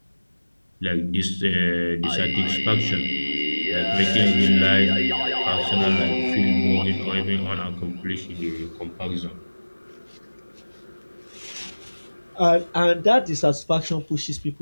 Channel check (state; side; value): inverted; both; correlation -1.00